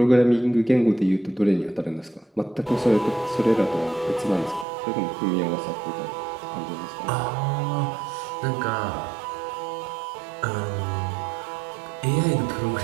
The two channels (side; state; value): left; drops out; at 4.7 s